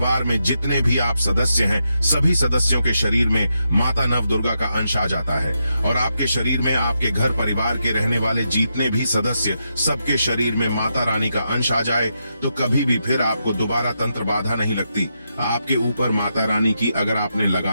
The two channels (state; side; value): inverted; both; correlation -0.84